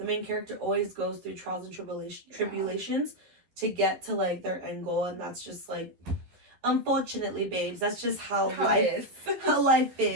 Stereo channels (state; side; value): late; left; 12 ms